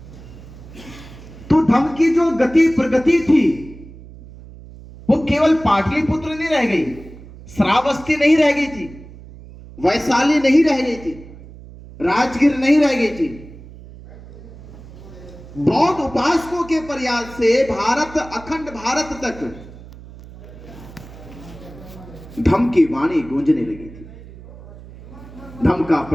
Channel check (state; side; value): noise; right; hum, 18 dB below the sound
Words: तो धम्म की जो गति प्रगति थी वो केवल पाटलिपुत्र नहीं रह गई, श्रावस्ती नहीं रह गई थी, वैशाली नहीं रह गई थी, राजगीर नहीं रह गई थी। बौद्ध उपासकों के प्रयास से भारत, अखंड भारत तक धम्म की वाणी गूंजने लगी थी। धम्म का